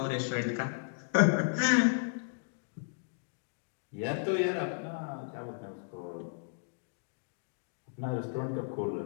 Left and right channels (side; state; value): right; silent; digital silence